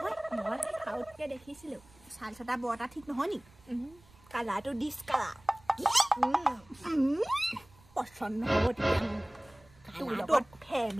মই খাউতকে দেখিছিলো চাল ছটা বৰটা ঠিক নহয় নি কালাৰটো ডিছ কালাৰ পছন্দ হ'ব তেতিয়া তোৰ লগত ফে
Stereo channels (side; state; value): right; noise; rumble, 27 dB below the sound